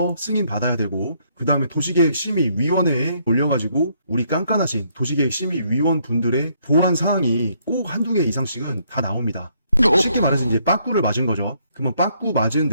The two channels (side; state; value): both; inverted; correlation -0.70